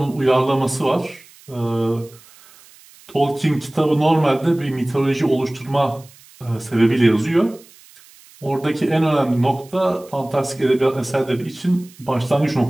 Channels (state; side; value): noise; right; hiss, 25 dB below the sound